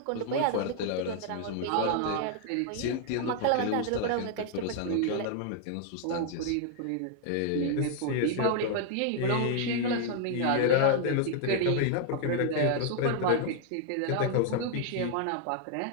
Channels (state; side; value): different; both; correlation 0.00